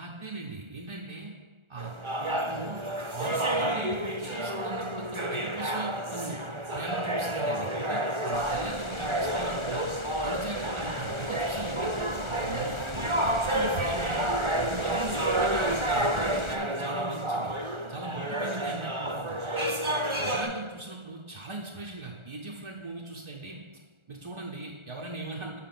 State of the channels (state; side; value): late; left; 1.4 ms